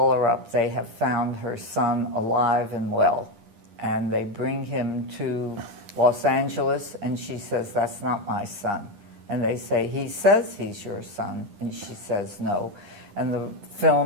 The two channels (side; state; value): left; late; 10 ms